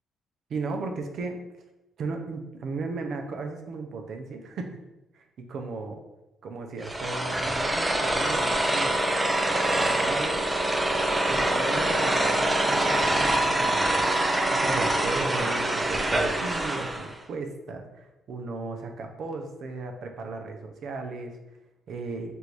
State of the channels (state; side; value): normal; both; correlation 0.86